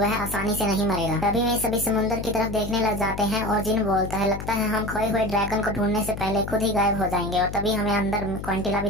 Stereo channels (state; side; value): noise; left; hum, 8 dB below the sound